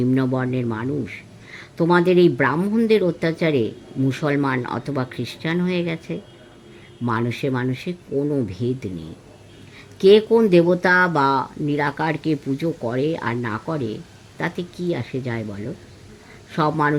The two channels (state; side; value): identical; both; correlation 1.00